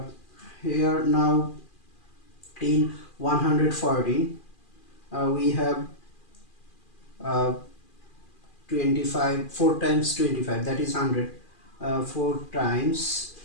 Here now in 114 we have 25, 4 times 25, that is 100. 4 times,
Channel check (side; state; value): right; late; 2.4 ms